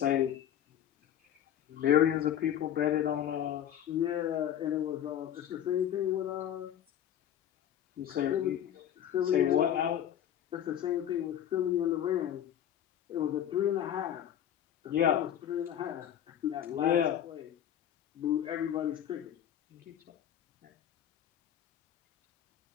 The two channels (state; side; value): quieter; right; 10.3 dB